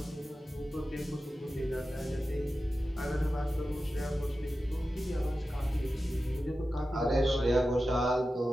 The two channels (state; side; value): normal; both; correlation 0.93